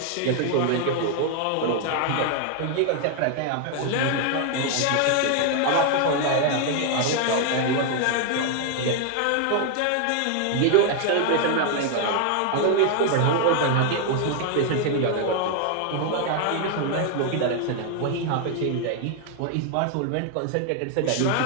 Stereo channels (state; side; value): different; both; correlation 0.00